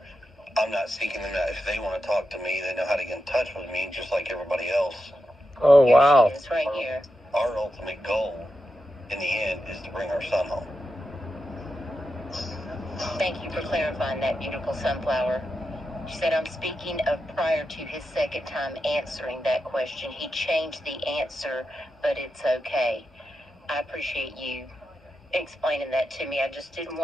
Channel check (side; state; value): both; normal; correlation 0.88